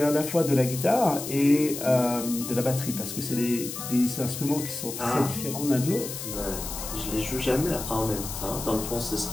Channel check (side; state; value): left; noise; hiss, 8 dB below the sound